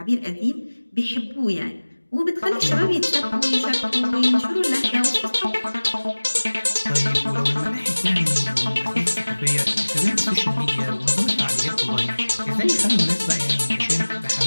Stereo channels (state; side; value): inverted; both; correlation -1.00